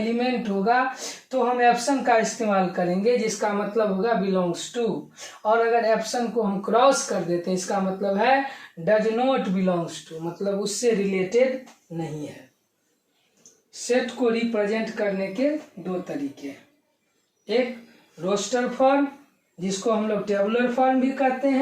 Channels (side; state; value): both; identical; correlation 1.00